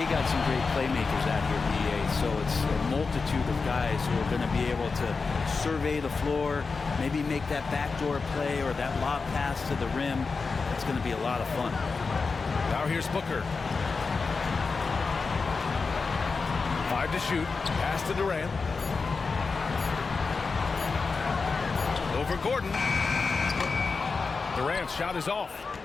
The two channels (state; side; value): quieter; right; 4.5 dB